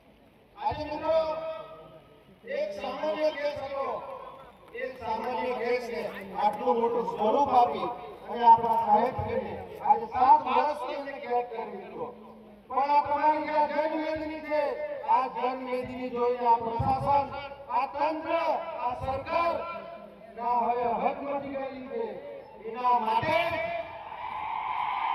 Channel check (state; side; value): identical; both; correlation 1.00